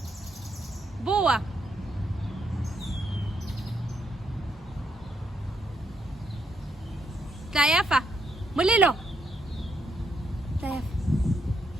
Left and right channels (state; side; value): normal; both; correlation 0.77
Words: Boa. Tsaya fa. Molelo. Tsaya fa.